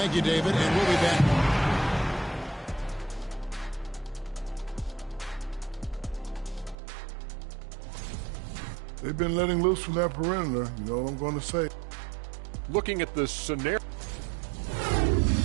you, David, and we'll be back. They've been letting loose from that perimeter. You know what I'm going to say. Looking at the scenario.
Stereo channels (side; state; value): left; drops out; at 6.8 s